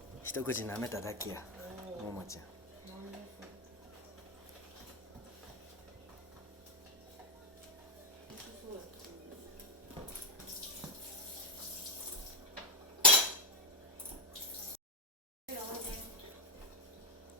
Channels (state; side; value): normal; both; correlation 0.09